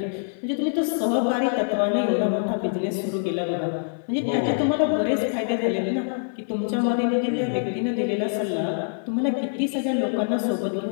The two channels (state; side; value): silent; right; 61 dB below the other